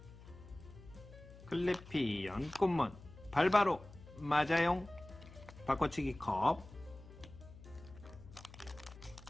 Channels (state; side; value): noise; left; hum, 18 dB below the sound